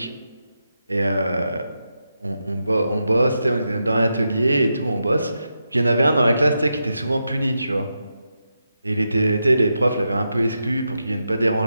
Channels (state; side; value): inverted; both; correlation -0.86